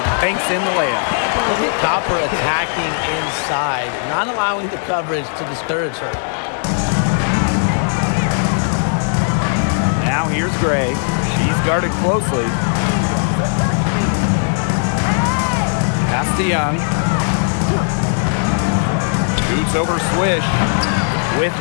banks in the layup. Look at Copper attacking inside, not allowing the coverage to discourage her. Now here's Gray. She's guarded closely. Pass to Young. Shoots over Swish. With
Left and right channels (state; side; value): silent; right; digital silence